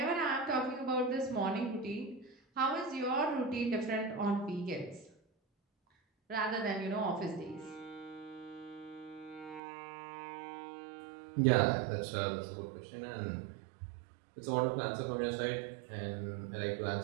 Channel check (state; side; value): drops out; left; at 9.6 s